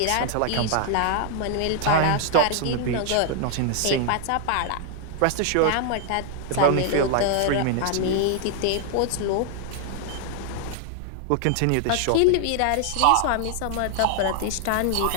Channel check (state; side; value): different; both; correlation 0.00